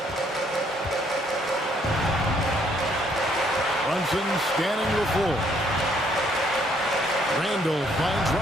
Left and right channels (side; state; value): both; normal; correlation 0.67